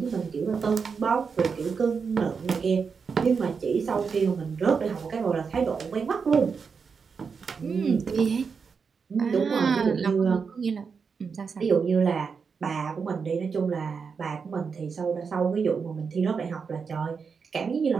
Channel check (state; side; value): quieter; left; 5.6 dB